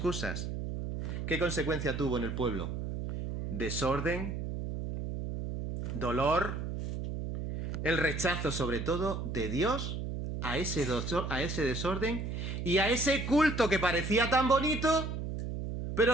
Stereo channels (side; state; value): right; noise; hum, 4 dB below the sound